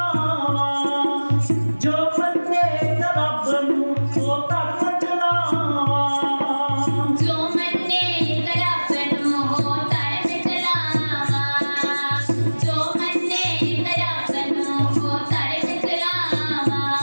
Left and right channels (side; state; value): both; inverted; correlation -1.00